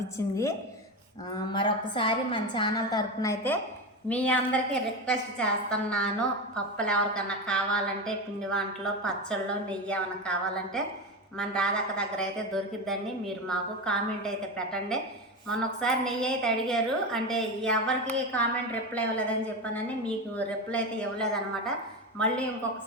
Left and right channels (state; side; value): normal; both; correlation 0.19